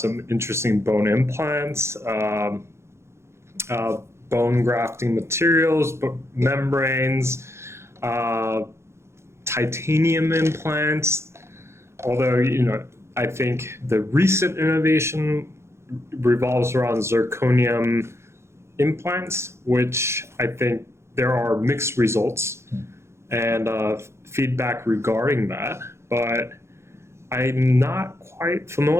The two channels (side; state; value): left; late; 0.13 ms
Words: interesting bone implants, bone grafting materials, membranes, titanium implants. Although, I think the recent innovation revolves around zirconium implants, which I think there are mixed results and feedback regarding that. But I'm not quite